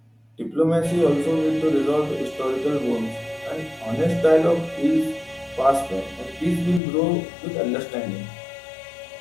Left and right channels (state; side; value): drops out; right; at 6.8 s